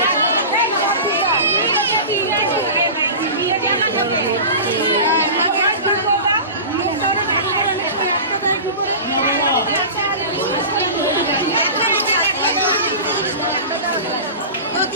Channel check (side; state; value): both; inverted; correlation -0.31